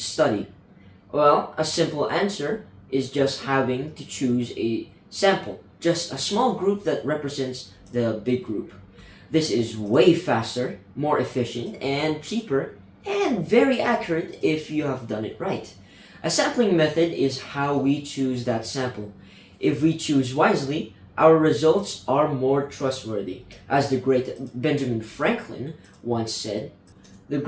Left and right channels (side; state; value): both; identical; correlation 1.00